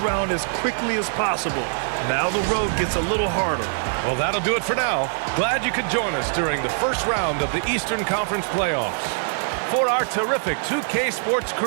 round as quickly as possible. Now the road gets a little harder. Well, that'll do it for now. Glad you could join us during the first round of the Eastern Conference playoffs. For our terrific 2K Sports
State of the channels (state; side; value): silent; left; digital silence